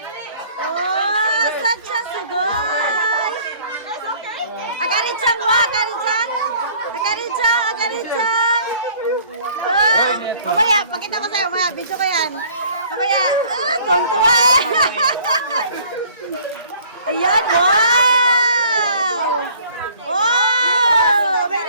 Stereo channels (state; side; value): inverted; both; correlation -0.54